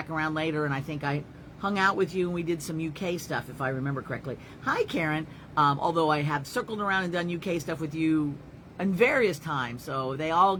around later, and I think I hung out with you, and we did some UK stuff, if I remember correctly. Hi, Karen. Although I have circled around and done UK stuff with you in various times, so they all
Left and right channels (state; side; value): identical; both; correlation 1.00